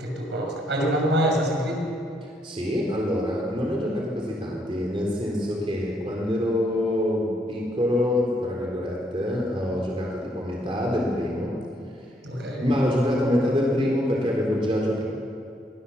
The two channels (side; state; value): both; normal; correlation 0.72